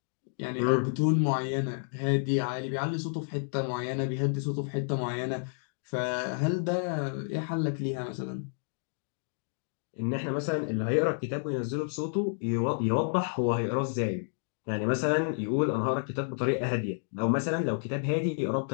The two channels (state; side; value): silent; right; digital silence